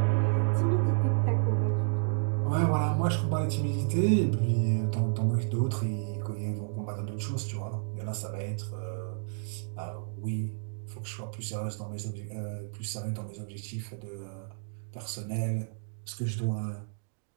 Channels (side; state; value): left; silent; digital silence